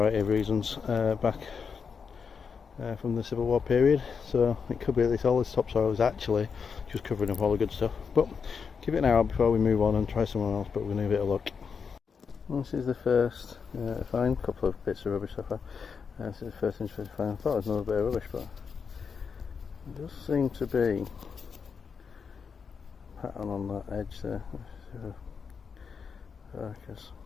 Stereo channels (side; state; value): right; quieter; 6.0 dB